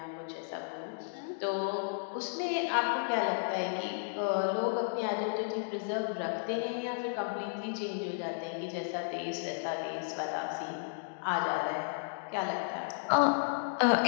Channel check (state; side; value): silent; right; digital silence